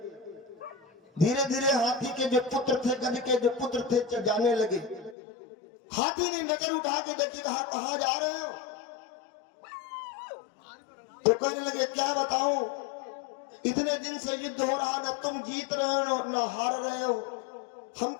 धीरे धीरे हाथी के जो पुत्र थे, गज के जो पुत्र थे, जाने लगे। हाथी ने नजर उठा के देखी, कहां जा रहे हो? तो कहने लगे क्या बताऊं, इतने दिन से युद्ध हो रहा, न तुम जीत रहे हो न हार रहे हो, हम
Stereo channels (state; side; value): drops out; right; at 5.2 s